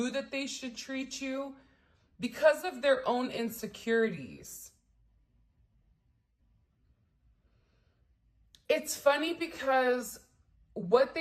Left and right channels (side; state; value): both; identical; correlation 1.00